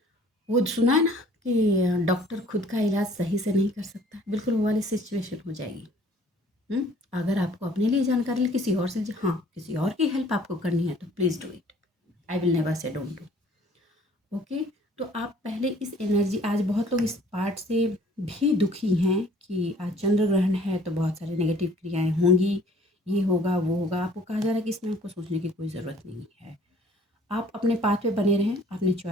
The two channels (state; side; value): normal; both; correlation 0.55